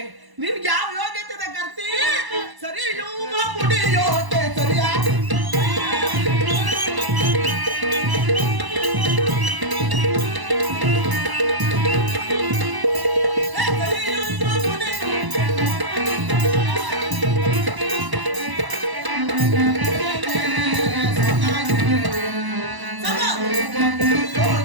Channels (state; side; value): late; left; 1.0 ms